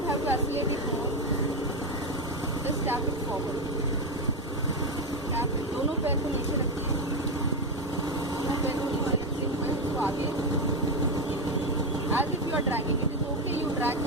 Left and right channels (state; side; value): normal; both; correlation 0.10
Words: have to accelerate it more, just tap it forward. Tap it. दोनों पैर को नीचे रखिए, दोनों पैर को नीचे रखते हुए उसको आगे, as if you are dragging. It is okay, you drag